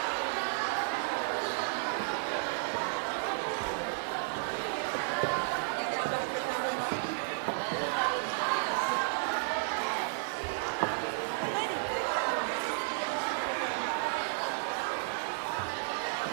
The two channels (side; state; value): left; silent; digital silence